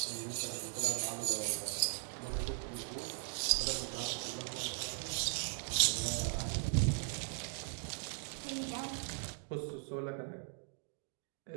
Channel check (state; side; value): silent; left; 52 dB below the other